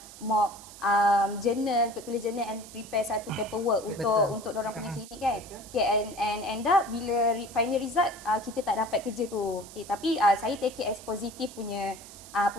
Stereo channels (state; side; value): noise; right; hiss, 17 dB below the sound